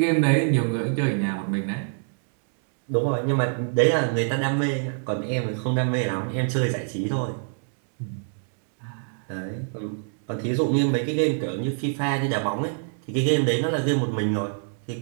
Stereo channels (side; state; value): left; silent; 57 dB below the other